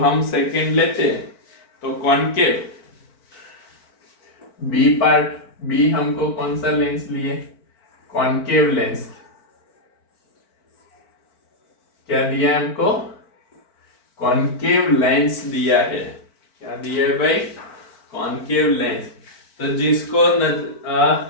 सेकंड लेते हैं तो कॉनकेव बी पार्ट, बी हमको कौन सा लेंस लिए? Concave lens. क्या दिया है हमको? कॉनकेव लेंस दिया है। क्या दिया है भाई? Concave lens. तो जिसको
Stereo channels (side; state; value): right; late; 4.5 ms